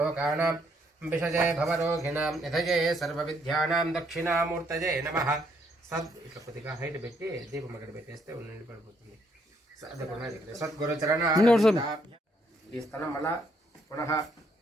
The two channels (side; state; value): both; normal; correlation 0.71